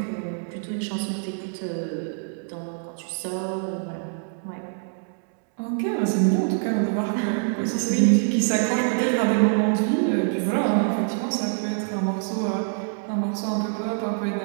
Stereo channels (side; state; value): left; silent; 62 dB below the other